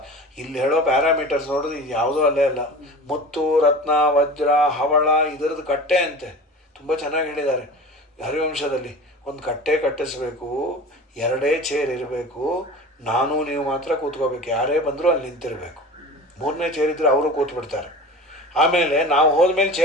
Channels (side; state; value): both; normal; correlation 0.36